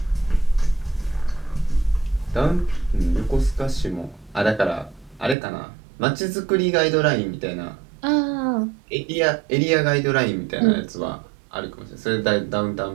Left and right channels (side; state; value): left; drops out; at 5.4 s